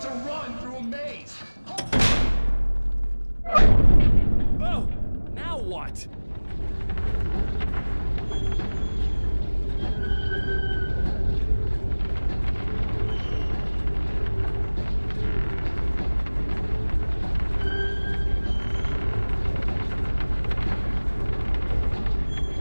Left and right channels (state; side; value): inverted; both; correlation -1.00